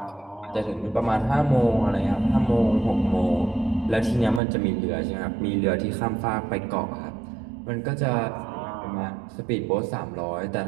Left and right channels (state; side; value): drops out; left; at 4.4 s